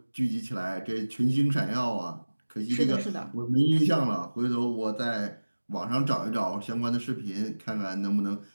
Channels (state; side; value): inverted; both; correlation -1.00